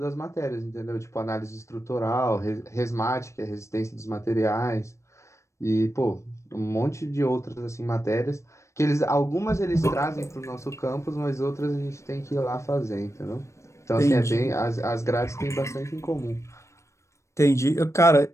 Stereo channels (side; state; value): right; late; 0.14 ms